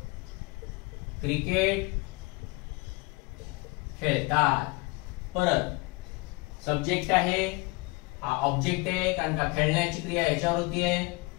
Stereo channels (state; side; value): quieter; right; 26.5 dB